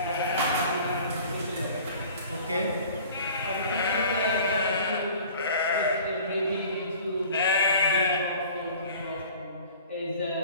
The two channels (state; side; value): inverted; both; correlation -0.47